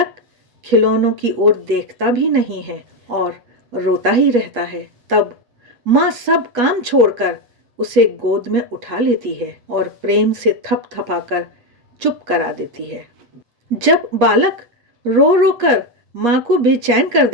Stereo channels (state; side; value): late; left; 8.4 ms